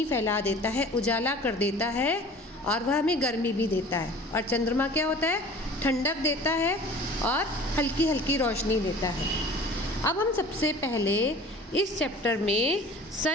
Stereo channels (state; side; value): normal; both; correlation 0.44